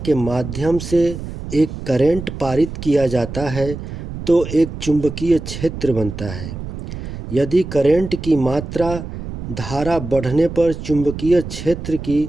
माध्यम से एक करंट पारित किया जाता है तो एक चुंबकीय क्षेत्र बनता है। यदि करंट की मात्रा धारा बढ़ने पर चुंबकीय क्षेत्र की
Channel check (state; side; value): noise; right; rumble, 9 dB below the sound